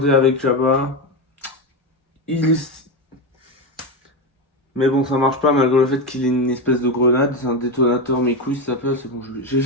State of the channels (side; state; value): both; normal; correlation 0.14